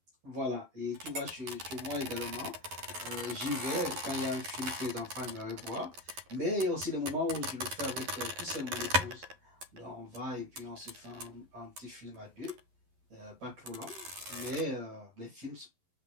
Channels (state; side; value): late; left; 11 ms